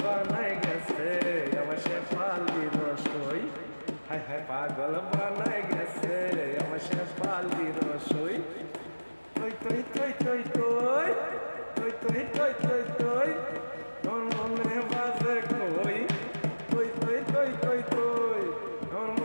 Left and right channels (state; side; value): inverted; both; correlation -1.00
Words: বানাই গেছে আমার শেফালি রসই হায় হায় পাগল বানাই গেছে আমার শেফালি রসই কই কই কই কই কই কই কই কই কই কই আমার মনে বাজে কই কই কই কই কই কই আমার